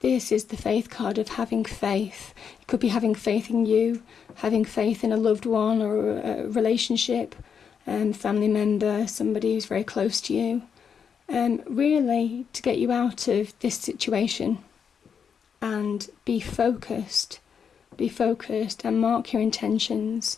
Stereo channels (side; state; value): right; quieter; 7.0 dB